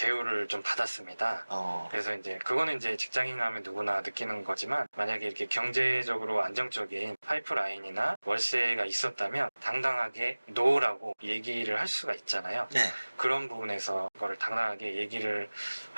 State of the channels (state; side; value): inverted; both; correlation -1.00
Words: 좀 받았습니다. 그래서 이제 그거는 이제 직장인 하면 누구나 느끼는 거지만 만약에 이렇게 경제적으로 안정적인 파이프라인이나 월세가 있었다면 당당하게 노라고 얘기를 할 수가 있잖아요. 네. 그런 부분에서 그거를 당당하게 얘기를